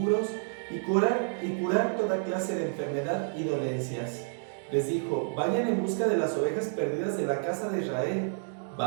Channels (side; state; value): left; silent; digital silence